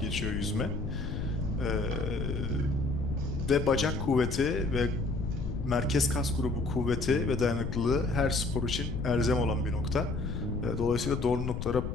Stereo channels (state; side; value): noise; left; rumble, 4 dB below the sound